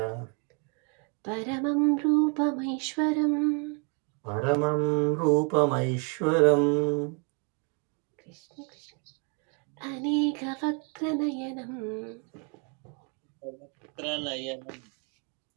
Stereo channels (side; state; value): left; quieter; 36.8 dB